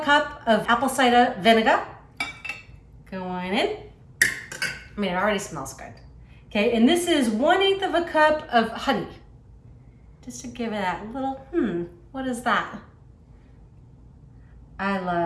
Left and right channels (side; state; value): both; identical; correlation 1.00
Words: cup of apple cider vinegar. Going in. I mean, it already smells good. Okay, and this is 1/8 cup of honey. Just to give it that little, what is that? I